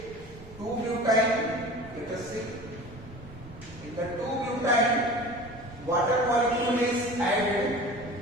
2-butane. Let us see. In the 2-butane, water molecule is added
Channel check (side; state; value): right; noise; rumble, 20 dB below the sound